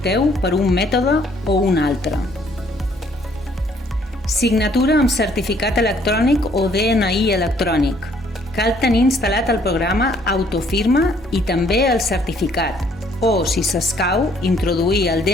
per un mètode o un altre. Signatura amb certificat electrònic o DNI electrònic. Cal tenir instal·lat el programa Autofirma i també el certificat, o, si s'escau, introduir el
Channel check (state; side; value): normal; both; correlation 0.63